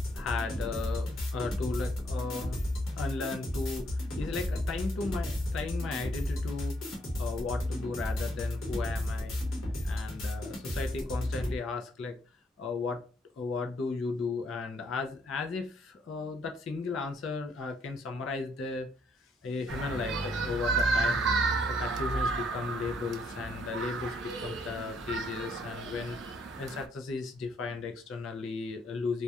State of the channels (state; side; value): normal; both; correlation 0.71